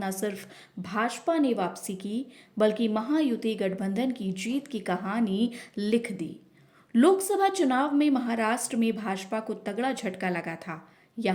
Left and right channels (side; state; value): both; identical; correlation 1.00